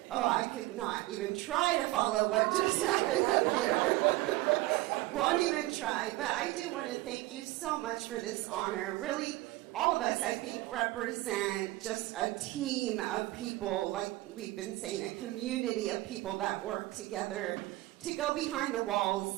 Oh, I could not even try to follow what just happened up here. Won't even try. But I do want to thank you so much for this honor. Really, all of us, I think, represent just a team of people, like we've been saying, a community of people that work together to go behind the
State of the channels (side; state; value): left; quieter; 18.7 dB